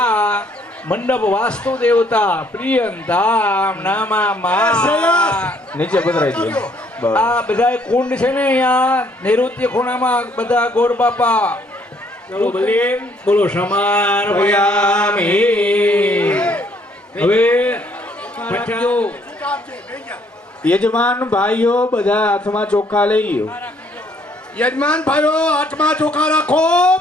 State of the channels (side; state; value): both; normal; correlation 0.65